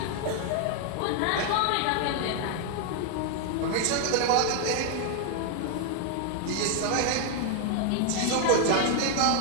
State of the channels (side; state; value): both; different; correlation 0.00